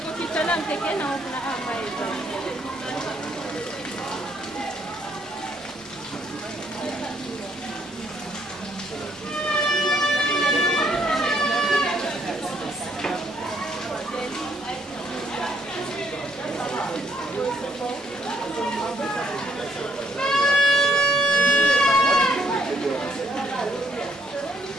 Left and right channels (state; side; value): normal; both; correlation 0.69